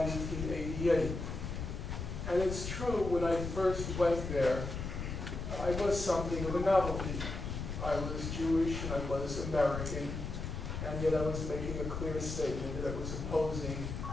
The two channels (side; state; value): left; noise; rumble, 5 dB below the sound